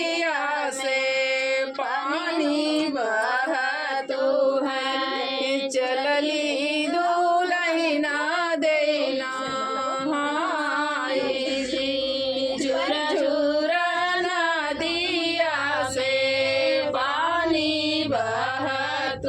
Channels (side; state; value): both; identical; correlation 1.00